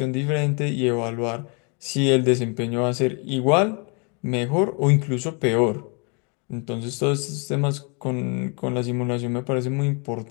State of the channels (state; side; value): quieter; right; 35.0 dB